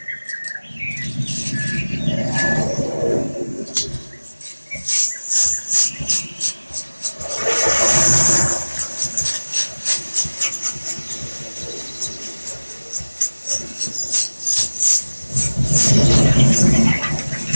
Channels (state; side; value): inverted; both; correlation -1.00